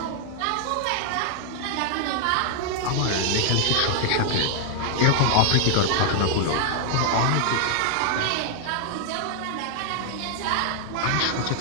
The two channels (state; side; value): different; both; correlation 0.00